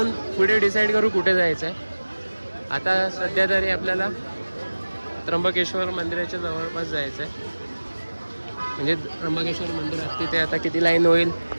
पुढे डिसाईड करू कुठे जायचं आहे. आता सध्या तरी आपल्याला त्र्यंबकेश्वर मंदिराच्या जवळपास जायचं आहे. म्हणजे त्र्यंबकेश्वर मंदिरात तिथे आता किती लाईन होईल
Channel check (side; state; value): both; inverted; correlation -1.00